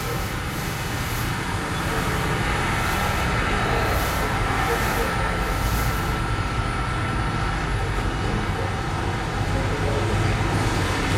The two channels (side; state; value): both; identical; correlation 1.00